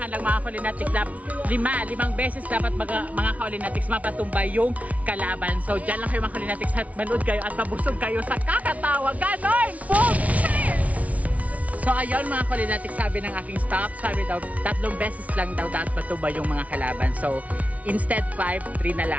lang mga Kulinatics, limang beses dapat mga Kulinatics mapatumba yung kalaban. So dyan lang kayo mga Kulinatics at manood kayo at mabusog kayo sa kakatawa. Ganon! Boom! Cheers! So ayun mga Kulinatics, sabi ng aking staff, sabi daw 3 beses lang daw dapat matumba yung mga kalaban. So instead 5, 3 na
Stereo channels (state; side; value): late; left; 0.068 ms